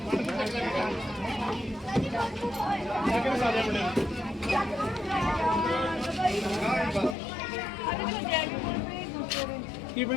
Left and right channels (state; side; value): drops out; right; at 7.2 s